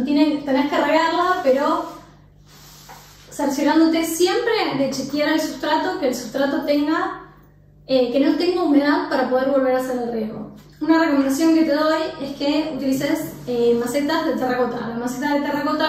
que regarla, pero cerciorándote siempre de chequear el sustrato, que el sustrato tenga, que no tenga humedad para poder volver a hacer el riego. Una recomendación que te doy es que utilices macetas de terracota. La maceta de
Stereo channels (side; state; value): both; identical; correlation 1.00